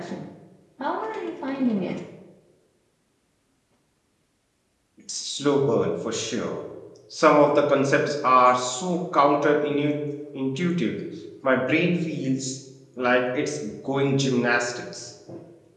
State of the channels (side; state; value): both; identical; correlation 1.00